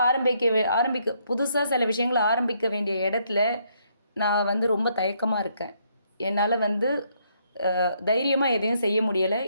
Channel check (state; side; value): inverted; both; correlation -0.72